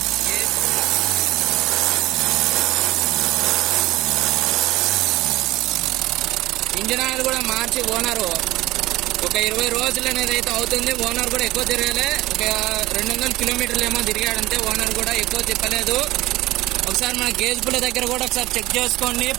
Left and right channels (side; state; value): left; quieter; 17.9 dB